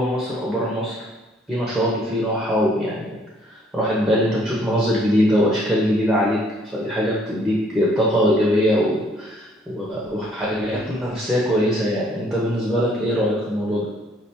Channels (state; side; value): normal; both; correlation 0.63